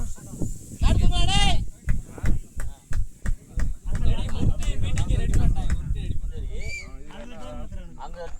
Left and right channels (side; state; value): both; identical; correlation 1.00